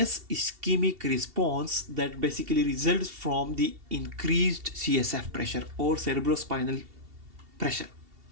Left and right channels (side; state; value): left; late; 2.7 ms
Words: ischemic response that basically results from the increased CSF pressure or cerebrospinal pressure.